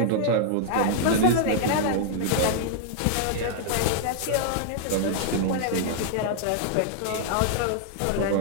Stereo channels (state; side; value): different; both; correlation -0.01